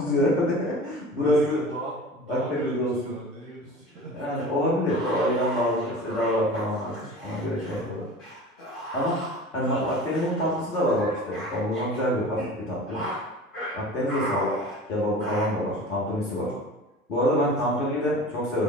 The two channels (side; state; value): both; normal; correlation 0.38